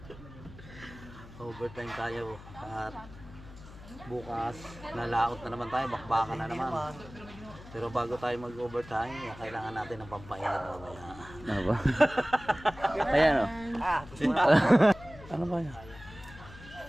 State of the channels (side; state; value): left; noise; hum, 17 dB below the sound